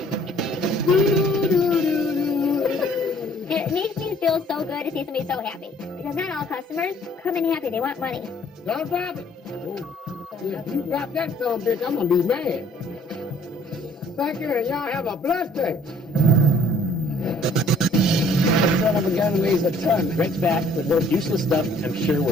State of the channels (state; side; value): normal; both; correlation 0.59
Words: Do, do, do, do. It makes me feel so good to see somebody so happy. Because not all customers come in happy. They want money. Don't drop it. If you drop that son of a bitch, I'm going to be mad. Thank you, and y'all have a blessed day. The son of a gun weighs a ton. Greg's back with more useless stuff. I'm sure